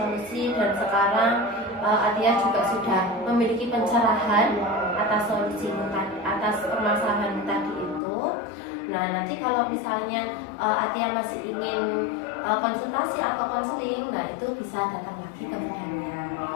dan sekarang Atia juga sudah memiliki pencerahan atas solusi tadi, atas permasalahan tadi itu. Nah, nanti kalau misalnya Atia masih ingin konsultasi atau konseling, nah itu bisa datang lagi ke Bu Daniar,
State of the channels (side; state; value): right; drops out; at 8.0 s